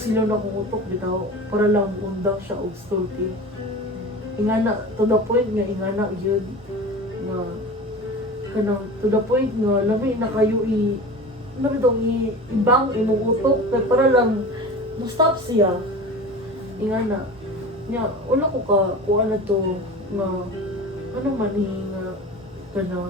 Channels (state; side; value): normal; both; correlation 0.34